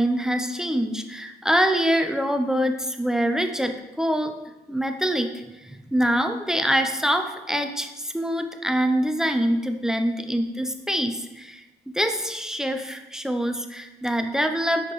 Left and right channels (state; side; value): normal; both; correlation 0.85